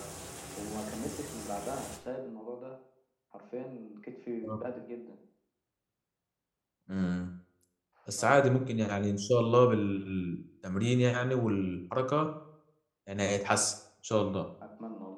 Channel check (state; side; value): identical; both; correlation 1.00